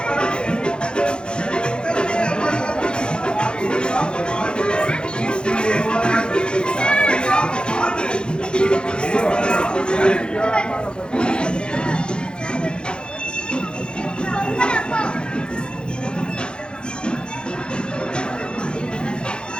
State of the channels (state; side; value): late; right; 0.050 ms